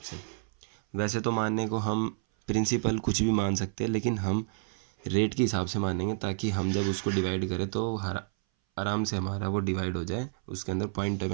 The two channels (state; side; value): silent; left; 58 dB below the other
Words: वैसे तो मानने को हम प्रिंसिपल कुछ भी मान सकते हैं, लेकिन हम रेट के हिसाब से मानेंगे ताकि हम जब उसको डिवाइड करें तो आराम से हमारा वो डिवाइड हो जाए, उसके अंदर पॉइंट